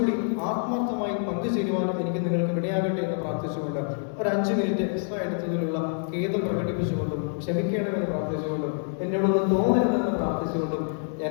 ആത്മാർത്ഥമായി പങ്കുചേരുവാനും എനിക്ക് നിങ്ങൾക്ക് ഇടയാകട്ടെ എന്ന് പ്രാർത്ഥിച്ചുകൊണ്ട് ഒരു 5 മിനിറ്റ് എക്സ്ട്രാ എടുത്തതിലുള്ള ഖേദം പ്രകടിപ്പിച്ചുകൊണ്ടും ക്ഷമിക്കണമെന്ന് പ്രാർത്ഥിച്ചുകൊണ്ടും എന്നോടൊന്ന് തോന്നരുതെന്ന് പ്രാർത്ഥിച്ചുകൊണ്ടും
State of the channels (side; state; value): right; silent; 60 dB below the other